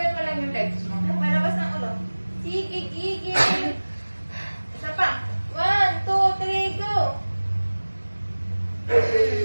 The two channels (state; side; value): inverted; both; correlation -1.00